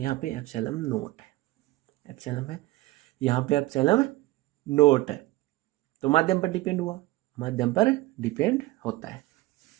पे एप्सिलॉन नोट है। एप्सिलॉन है, यहाँ पे एप्सिलॉन नोट है। तो माध्यम पर डिपेंड हुआ, माध्यम पर डिपेंड होता है।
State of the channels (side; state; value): left; quieter; 18.8 dB